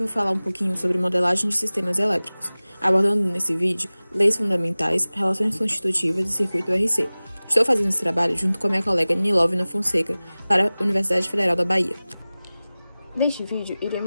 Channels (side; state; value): both; inverted; correlation -0.98